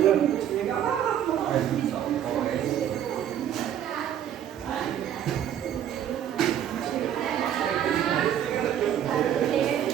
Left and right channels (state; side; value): quieter; left; 10.2 dB